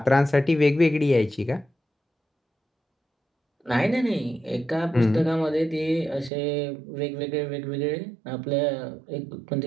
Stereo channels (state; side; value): drops out; left; at 6.3 s